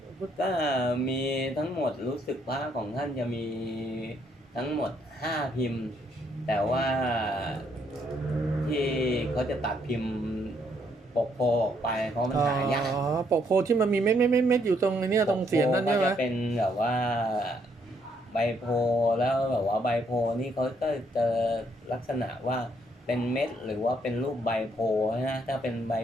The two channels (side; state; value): both; normal; correlation 0.71